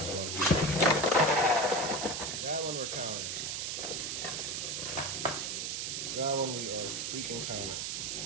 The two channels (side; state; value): right; noise; hiss, 2 dB below the sound